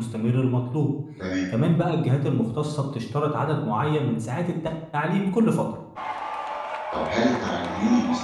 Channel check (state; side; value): identical; both; correlation 1.00